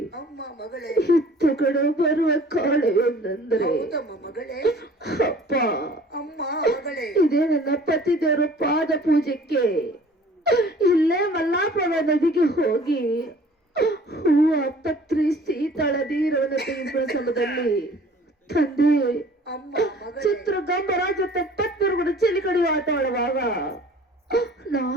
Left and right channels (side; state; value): both; normal; correlation 0.50